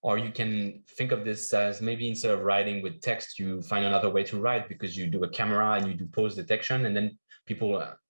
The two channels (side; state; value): both; inverted; correlation -1.00